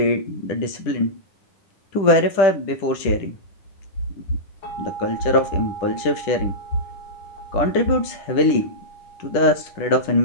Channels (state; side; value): late; right; 10 ms